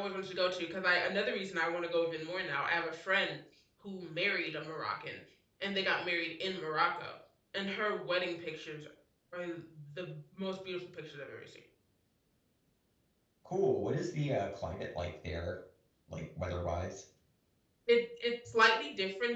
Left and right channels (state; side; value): identical; both; correlation 1.00